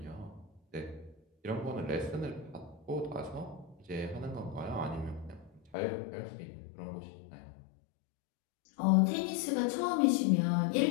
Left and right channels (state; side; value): drops out; right; at 5.7 s